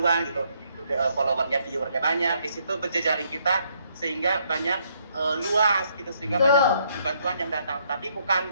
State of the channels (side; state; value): both; inverted; correlation -0.71